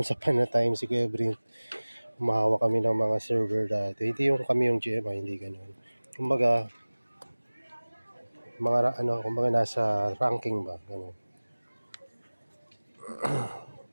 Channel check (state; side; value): inverted; both; correlation -1.00